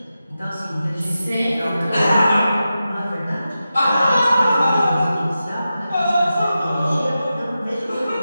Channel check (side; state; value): both; inverted; correlation -0.91